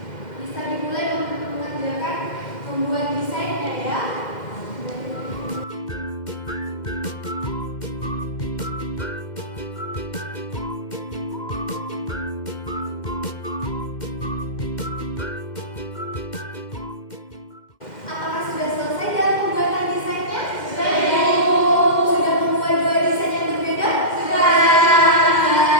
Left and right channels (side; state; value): right; late; 2.1 ms